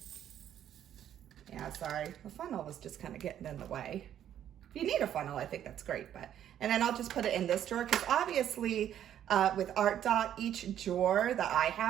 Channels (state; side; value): quieter; left; 10.5 dB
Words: Yeah, sorry, the funnel was just kind of getting in the way. If you need a funnel, I think that's great. And then I'll just put it in this drawer, because obviously with Art Dot, each drawer that I